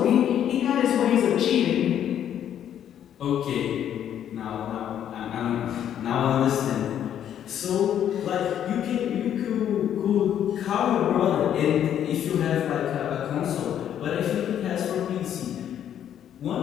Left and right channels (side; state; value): right; quieter; 10.0 dB